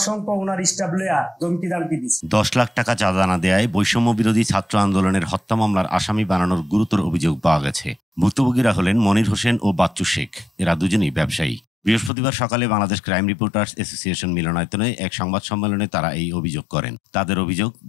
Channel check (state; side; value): drops out; right; at 12.1 s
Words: ওনার স্টাফ লইয়া ধমকি দামকি দিচ্ছে। 10 লাখ টাকা চাঁদা না দেয়ায় বৈষম্য বিরোধী ছাত্র আন্দোলনের হত্যা মামলার আসামি বানানোর গুরুতর অভিযোগ পাওয়া গেছে। ভুক্তভোগীরা হলেন মনির হোসেন ও বাচ্চু শেখ। এরা দুজনেই ব্যবসায়ী। বৃহস্পতিবার সকালে বাংলাদেশ ক্রাইম রিপোর্টার্স অ্যাসোসিয়েশন মিলনায়তনে এক সংবাদ সম্মেলনে তারা এই অভিযোগ করেন। তাদের অভিযোগ,